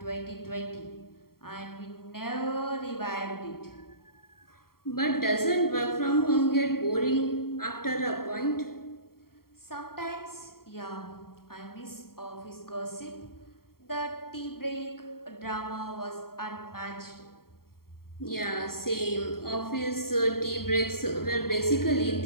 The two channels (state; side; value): late; right; 0.93 ms